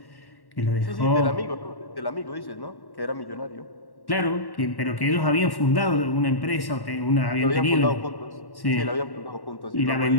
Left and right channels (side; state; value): right; late; 1.1 ms